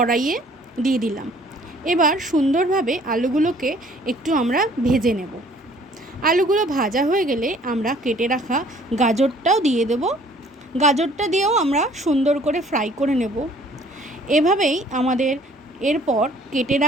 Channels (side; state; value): both; normal; correlation 0.56